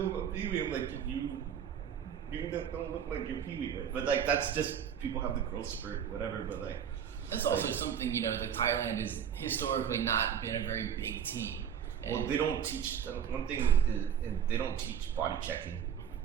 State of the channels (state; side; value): quieter; left; 8.5 dB